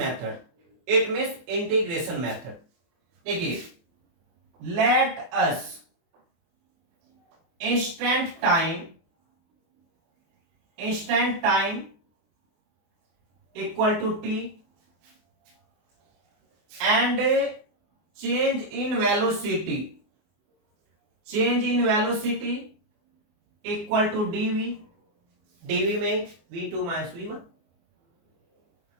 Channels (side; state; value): left; late; 24 ms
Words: it means integration method. देखिए let us instant time equal to t and change in velocity equal to dv में v2 माइनस v1